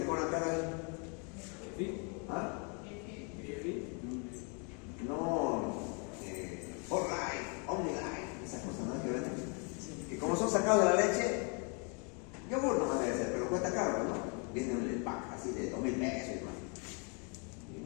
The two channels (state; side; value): quieter; right; 36.2 dB